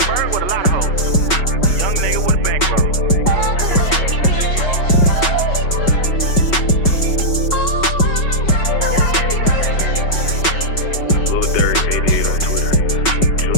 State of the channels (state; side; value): late; right; 5.3 ms